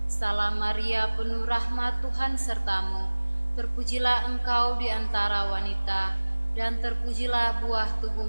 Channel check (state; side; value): inverted; both; correlation -1.00